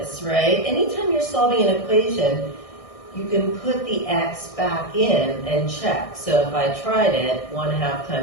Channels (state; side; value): late; right; 1.6 ms